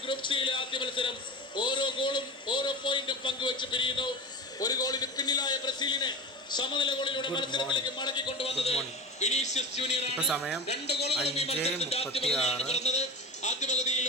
ഗ്രൂപ്പ് സിയിലെ ആദ്യ മത്സരം. ഓരോ ഗോളും ഓരോ പോയിന്റും പങ്കുവെച്ച് പിരിയുന്നു. ഒരു ഗോളിന് പിന്നിലായ ബ്രസീലിനെ സമനില ഗോളിലൂടെ മത്സരത്തിലേക്ക് മടക്കിക്കൊണ്ടുവന്നത് വിനീഷ്യസ് ജൂനിയർ ആണ്. 2 ഗോളുകളും ഈ മത്സരത്തിന്റെ ആദ്യ പകുതിയിലാണ് പിറന്നത്. ആദ്യ പകുതിയിൽ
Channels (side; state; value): both; normal; correlation 0.27